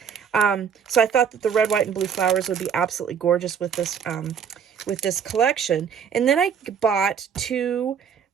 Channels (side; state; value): left; quieter; 7.3 dB